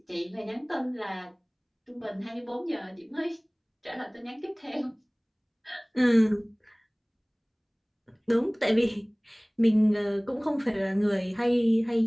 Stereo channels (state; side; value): identical; both; correlation 1.00